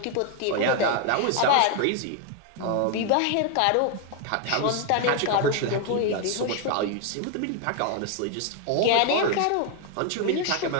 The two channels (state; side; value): different; both; correlation 0.01